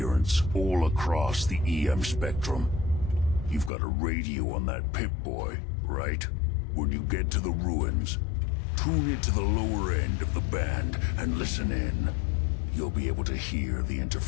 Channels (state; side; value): drops out; right; at 3.7 s